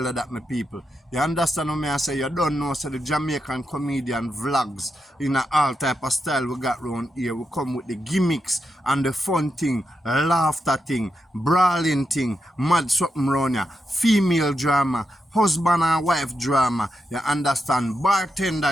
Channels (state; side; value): normal; both; correlation 0.86